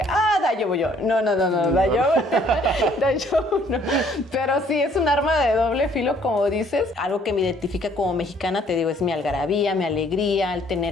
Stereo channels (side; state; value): both; normal; correlation 0.61